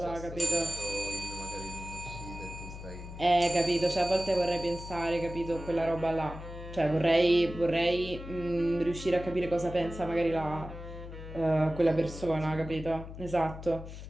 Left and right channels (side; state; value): left; noise; hum, 11 dB below the sound